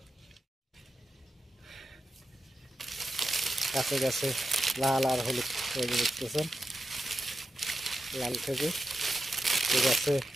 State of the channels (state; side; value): normal; both; correlation 0.90